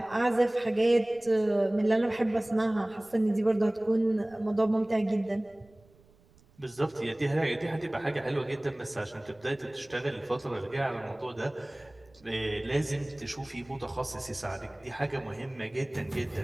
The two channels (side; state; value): right; noise; rumble, 29 dB below the sound